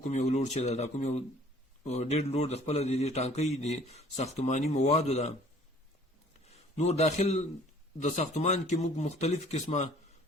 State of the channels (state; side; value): normal; both; correlation 0.54